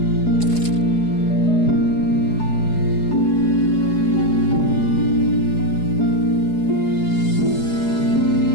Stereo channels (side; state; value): right; late; 4.8 ms